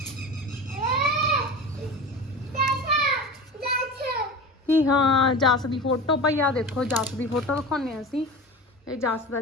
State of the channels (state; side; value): normal; both; correlation 0.31